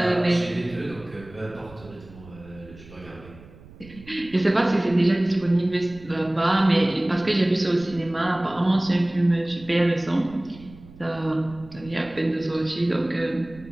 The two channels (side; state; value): right; noise; rumble, 20 dB below the sound